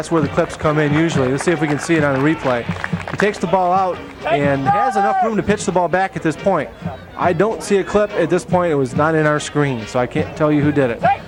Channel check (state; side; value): identical; both; correlation 1.00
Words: where the clips come in usually. Let's see if we can see it on the replay. He takes the ball out and has enough room to pitch the ball back at this point. I don't see a clip at this point. It was not in our screen, so I can't tell you who did it.